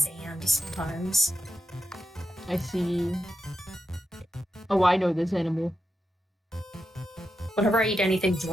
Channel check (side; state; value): both; normal; correlation 0.88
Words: sometimes. I see. Oh, I know this animal. Whenever I eat anything